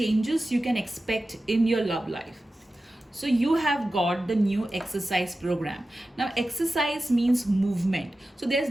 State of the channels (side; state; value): both; normal; correlation 0.94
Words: you can expect in your love life. So you have got the new exercise program. Now exercise means movement. So there's